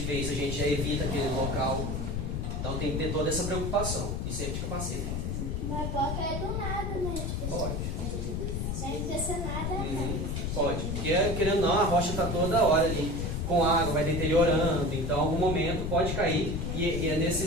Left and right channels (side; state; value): left; noise; rumble, 1 dB below the sound